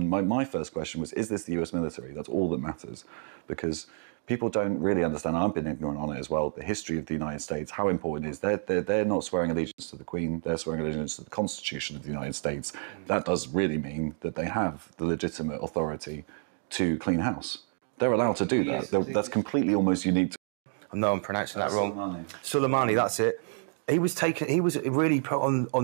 my first question was, is this the US military? That's all that matters. Because people don't really understand, I've been ignorant on it as well, the history of the United States, how important it is. They're not swearing allegiance to the Queen, they're swearing allegiance to the Constitution of the United States. That does really mean that they have the legitimate authority to clean house. They're allowed to do that. That's completely almost unique to... I know I'm pronouncing that wrong. Soleimani, that's it. He was really put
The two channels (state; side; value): silent; left; 58 dB below the other